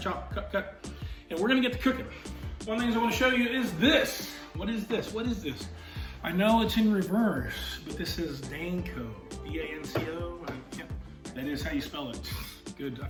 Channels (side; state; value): both; identical; correlation 1.00